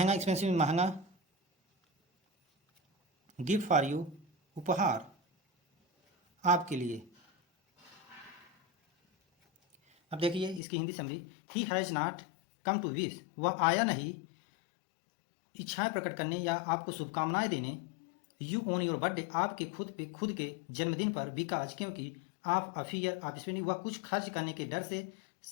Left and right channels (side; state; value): right; drops out; at 10.6 s